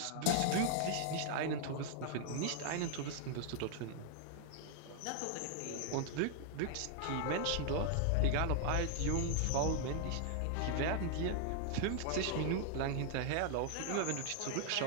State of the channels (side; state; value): both; different; correlation 0.00